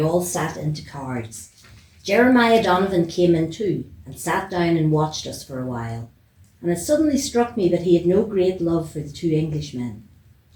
all sat into cards. Jeremiah Donovan came in too, and sat down and watched us for a while, and it suddenly struck me that he had no great love for the two Englishmen.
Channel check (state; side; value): identical; both; correlation 1.00